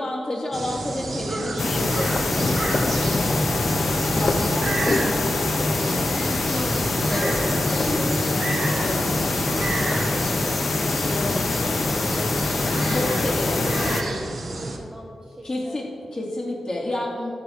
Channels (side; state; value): both; normal; correlation 0.90